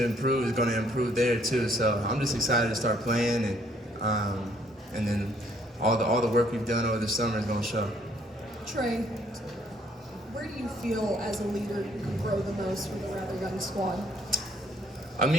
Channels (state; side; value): normal; both; correlation 0.65